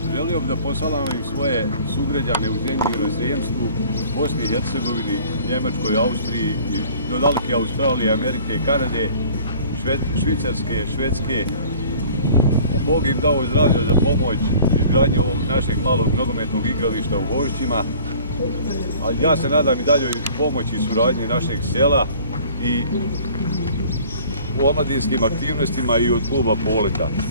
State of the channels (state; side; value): inverted; both; correlation -0.49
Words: želio bih da posalamim svoje sugrađane u zemlji i inozemstvu, Bosni i Hercegovini, Njemačkoj, Austriji, do daleke Australije, Amerike, Kanade, Švicarske, Švedske. Bog im dao zdravlja za pomoć izgradnje ovog našeg malog nogometnog igrališta u Vožđima. Ali ja se nadam i daljoj pomoći i suradnji našeg sela i u omladinskim aktivnostima i od kluba Poleta.